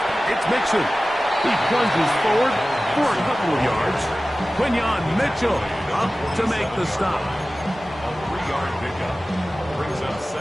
it's Mixon. He plunges forward for a couple of yards. Quinyon Mitchell up to make the stop. A 3-yard pickup brings up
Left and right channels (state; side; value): normal; both; correlation 0.96